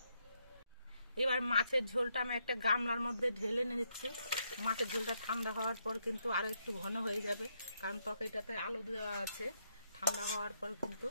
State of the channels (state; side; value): inverted; both; correlation -0.77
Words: এবার মাছের ঝোলটা আমি একটা গামলার মধ্যে ঢেলে নিচ্ছি। মাছের ঝোলটা ঠান্ডা হওয়ার পর কিন্তু আরো একটু ঘন হয়ে যাবে, কারণ তরকারিটাতে আলু দেওয়া আছে। ঠান্ডা হওয়ার পর কিন্তু